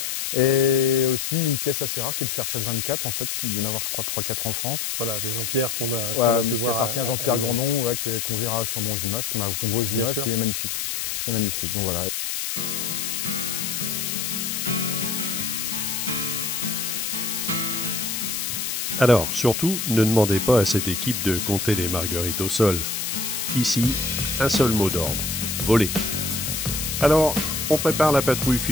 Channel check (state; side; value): noise; left; hiss, 2 dB below the sound